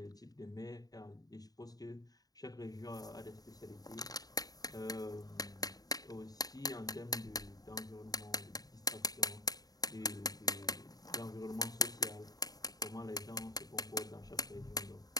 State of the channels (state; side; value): late; right; 0.18 ms